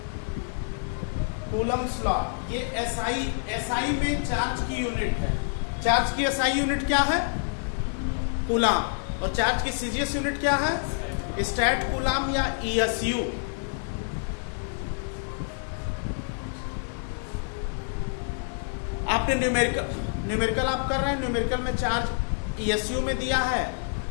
कूलम्स लॉ, ये एसआई में चार्ज की यूनिट है। चार्ज की एसआई यूनिट क्या है? कूलाम। और चार्ज की सीजीएस यूनिट क्या है? स्टैट कूलाम या ईएसयू। आपने न्यूमेरिकल आप कर रहे हैं, न्यूमेरिकल में चार्ज ईएसयू में दिया है,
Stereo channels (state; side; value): silent; right; digital silence